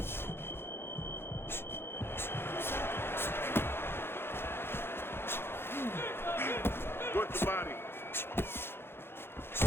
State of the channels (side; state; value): right; late; 0.11 ms